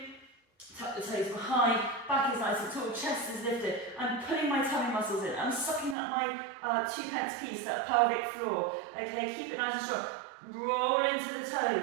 tuck the toes behind, back is nice and tall, chest is lifted. I'm pulling my tummy muscles in. I'm sucking up my 2-pence piece, that pelvic floor. Okay, keep it nice and strong. Roll into the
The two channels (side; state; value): left; drops out; at 6.0 s